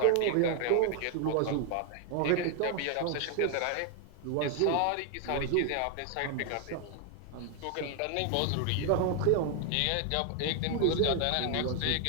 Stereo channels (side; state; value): both; different; correlation 0.01